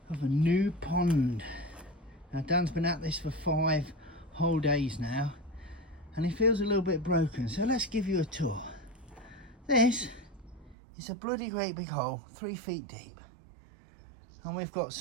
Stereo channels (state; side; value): drops out; left; at 10.8 s